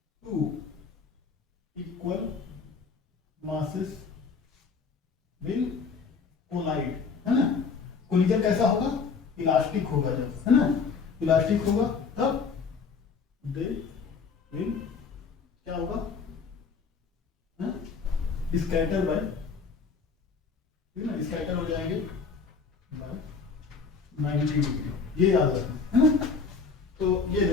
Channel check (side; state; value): right; quieter; 5.2 dB